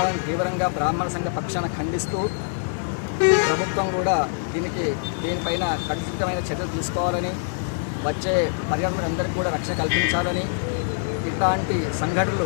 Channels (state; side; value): silent; right; digital silence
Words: తీవ్రంగా బ్రాహ్మణ సంఘ పక్షాన ఖండిస్తూ ప్రభుత్వం కూడా దీనిపైన ఖచ్చితమైన చర్యలు తీసుకోవాలని వచ్చే పర్యాటకులందరికీ కూడా రక్షణ కల్పించాలని ఇట్లాంటి సంఘటనలు